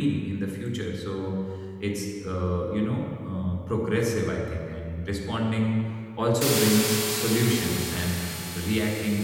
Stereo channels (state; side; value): identical; both; correlation 1.00